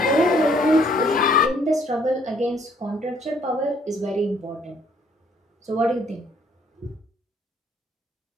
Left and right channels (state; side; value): normal; both; correlation 0.64